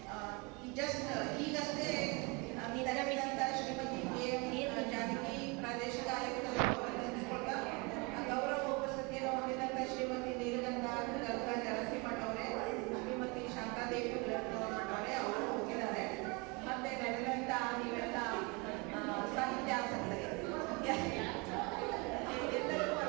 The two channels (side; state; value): left; quieter; 28.3 dB